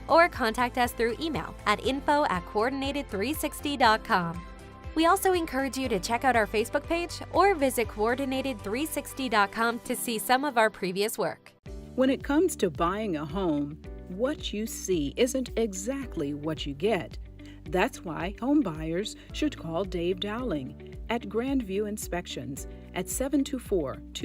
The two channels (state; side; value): identical; both; correlation 1.00